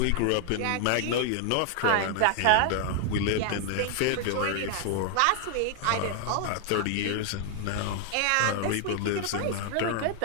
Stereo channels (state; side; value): different; both; correlation 0.00